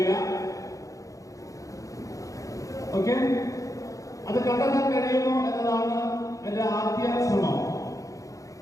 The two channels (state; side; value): late; right; 0.16 ms